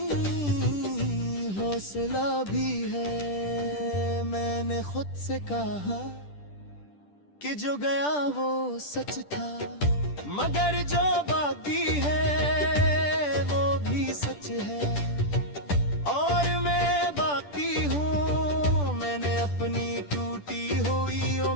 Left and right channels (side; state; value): right; late; 10 ms